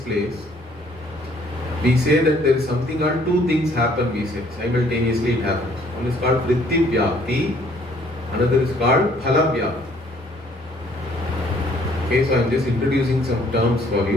we say that there is something called two things happen, we say, simultaneously it happens. One is called Vritti Vyapti, another is called Phala Vyapti. Okay, so I am just introducing some terms for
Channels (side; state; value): both; normal; correlation 0.61